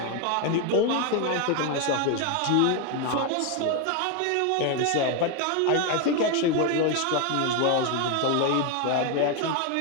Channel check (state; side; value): different; both; correlation 0.01